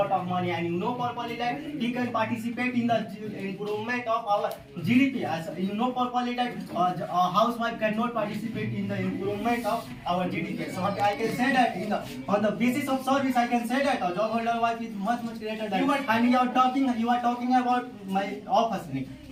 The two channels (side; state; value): both; identical; correlation 1.00